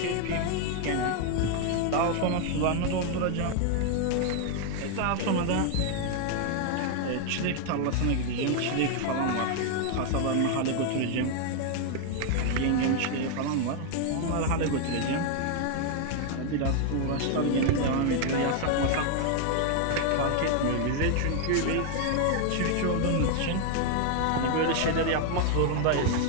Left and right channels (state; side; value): different; both; correlation 0.00